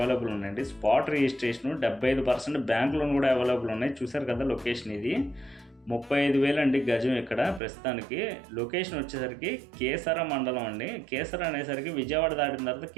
ఉన్నాయండి. స్పాట్ రిజిస్ట్రేషన్ 75% బ్యాంక్ లోన్ కూడా అవైలబుల్ ఉన్నాయి. చూసారు కదా లొకేషన్ ఇది 35,000 అండి గజం. ఇక్కడ ప్రస్తుతానికి లొకేషన్ వచ్చేసరికి కేసర మండలం అండి. కేసర అనేసరికి విజయవాడ దాటిన తర్వాత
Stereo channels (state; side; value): drops out; left; at 7.6 s